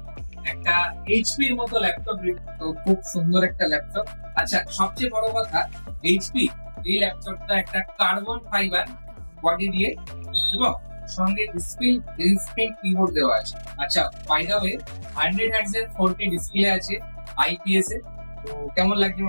একটা এইচপির মতো ল্যাপটপ, তো খুব সুন্দর একটা ল্যাপটপ। আচ্ছা, সবচেয়ে বড় কথা, এইচপি এই ল্যাপটপটা একটা কার্বন ফাইবার বডি দিয়ে এবং সঙ্গে স্ক্রিন কিবোর্ড দেওয়া আছে। আচ্ছা, বাই দ্য ওয়ে 100 হার্টজ এর 4K ডিসপ্লে আছে আইপিএস এ। তো কেমন লাগছে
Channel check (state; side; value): inverted; both; correlation -1.00